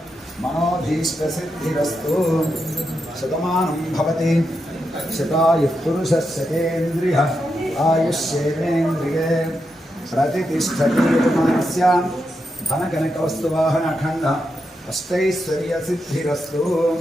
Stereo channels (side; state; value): both; normal; correlation 0.85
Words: मनोभीष्टसिद्धिरस्तु. शतमानं भवति शतायुः पुरुषः शतेन्द्रियः आयुष्येवेन्द्रिये प्रतितिष्ठति यजमानस्य धनकनकवस्तुवाहनखण्डः अष्टैश्वर्यसिद्धिरस्तु.